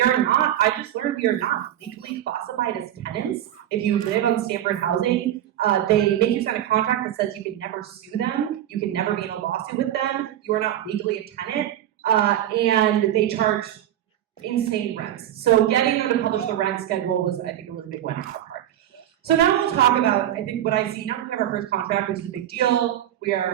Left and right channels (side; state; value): left; quieter; 11.9 dB